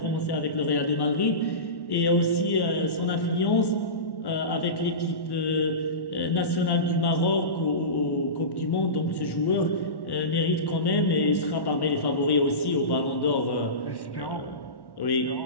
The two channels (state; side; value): late; right; 1.1 ms